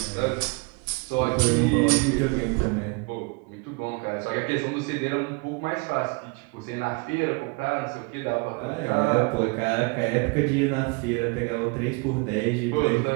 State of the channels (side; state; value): left; quieter; 29.8 dB